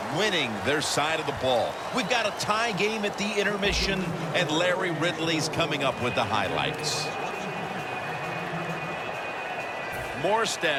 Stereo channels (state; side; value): identical; both; correlation 1.00